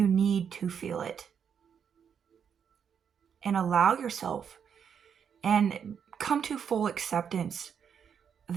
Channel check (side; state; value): left; quieter; 7.5 dB